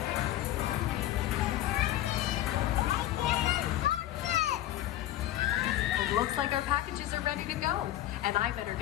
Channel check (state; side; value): quieter; right; 13.8 dB